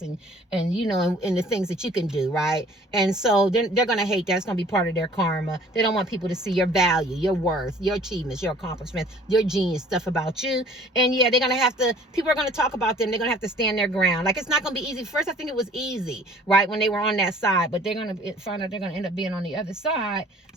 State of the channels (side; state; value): both; normal; correlation 0.53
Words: and the things that you can do. Right. And so they're going to hate that. It's going to be part of their karma. They don't want people to see your value, your worth, your achievements, your accomplishments, your genius stuff about you. And yeah, they're going to have to, people are going to talk about them. They're going to have to stand their ground. Like, it's not going to be easy. First, I think it was easy, right, when they were on that side, but they're going to find out they're going to end up being on the other side.